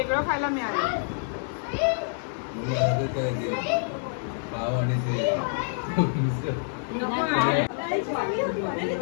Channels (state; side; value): silent; right; 60 dB below the other